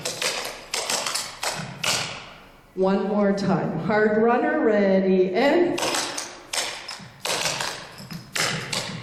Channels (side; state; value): both; identical; correlation 1.00